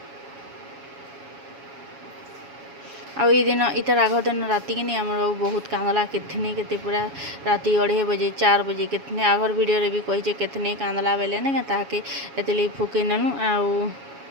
आउ ये दिन इतार आग दिन राति कि आम बाबू बहुत कांदला केथने केते पूरा राति 2:30 बजे 4 बजे केतने आगर वीडियो रे भी कही केतने कांदला बेले ना ताके एतले फुके ननु आउ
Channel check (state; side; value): late; left; 7.2 ms